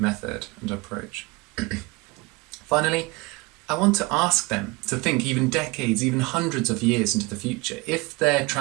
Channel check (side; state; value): left; quieter; 24.0 dB